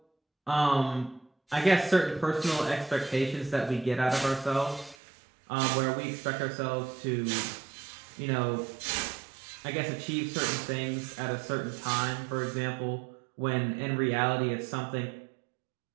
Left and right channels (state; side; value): drops out; left; at 5.0 s